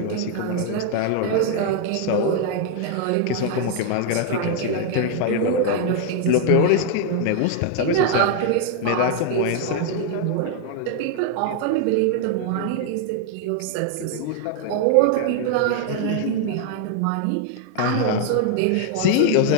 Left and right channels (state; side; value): different; both; correlation 0.00